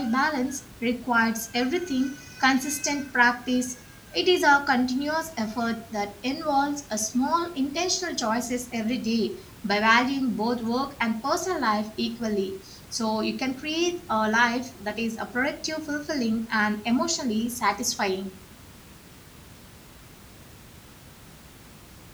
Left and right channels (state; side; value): identical; both; correlation 1.00